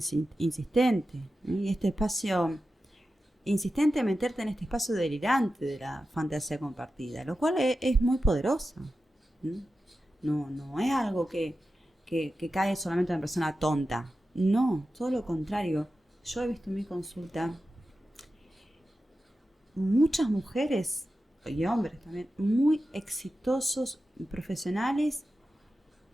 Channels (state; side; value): normal; both; correlation 0.92